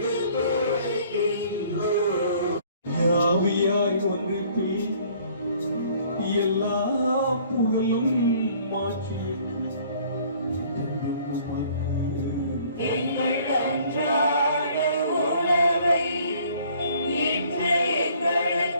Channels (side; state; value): both; inverted; correlation -0.57